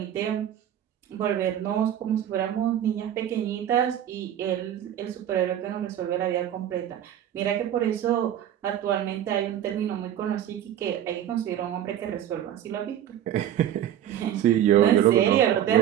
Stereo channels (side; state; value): left; quieter; 10.8 dB